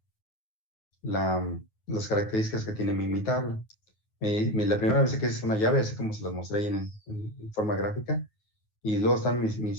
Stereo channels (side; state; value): right; late; 9.4 ms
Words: las características que tiene mi tabla. La primera vez que es una llave, así como se las mostré ahí en forma gráfica, y luego están